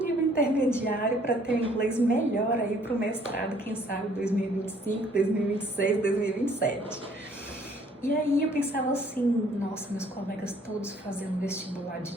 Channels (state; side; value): normal; both; correlation 0.60